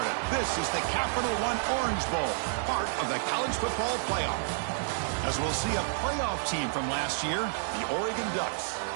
This is the Capital One Orange Bowl, part of the college football playoff. As we'll see a playoff team from last year, the Oregon Ducks,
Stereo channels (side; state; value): left; silent; digital silence